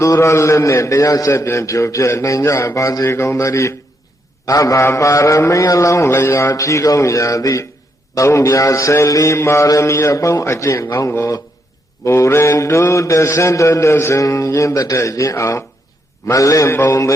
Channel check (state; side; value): normal; both; correlation 0.78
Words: ူရလက်နဲ့တရားဆက်ပြန်ဖြိုဖျက်နိုင်ကြပါစေကုန်သတည်းအဘပါရမီအလောင်းလျာဖြီးကောင်းရာသည့်သုံးပြ14ပါရမီအပေါင်းအကျင့်ကောင်းကိုမူရင်တုတဆင်တတဆင်ရင်းတတ်ရင်အောင်မလင့်ပုံသ